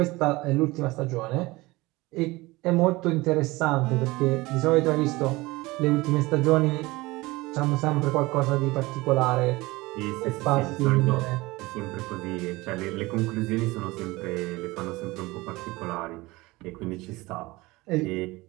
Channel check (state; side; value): quieter; left; 21.3 dB